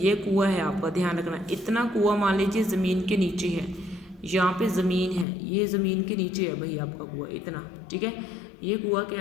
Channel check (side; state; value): right; drops out; at 5.2 s